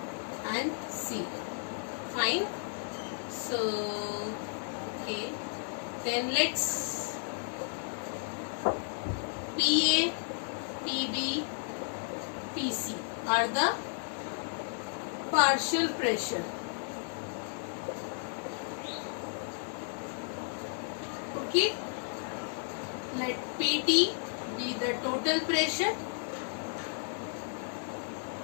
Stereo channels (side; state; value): right; silent; 55 dB below the other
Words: and C. Fine. So okay. Then let's PA, PB, PC are the partial pressure. Okay. Let PT be the total pressure